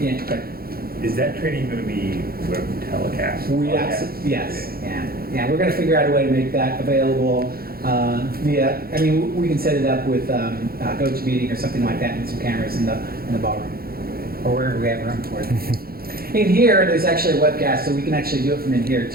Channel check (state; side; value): late; left; 0.44 ms